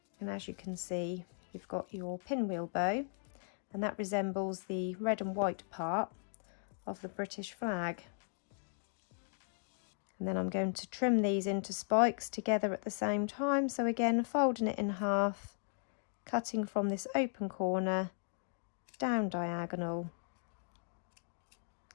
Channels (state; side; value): silent; right; digital silence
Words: And as you can see, you've got your pinwheel bow, and that resembles the red and white part of the British flag. And then I'm going to trim these into spikes together at the same time. So again, folding it in half, cutting from this open corner down diagonal,